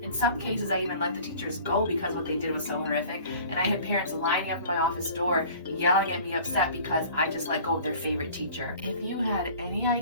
In some cases, I even let the teachers go because what they did was so horrific, and I had parents lining up at my office door yelling at me upset because I just let go of their favorite teacher. If you had any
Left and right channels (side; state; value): both; inverted; correlation -0.47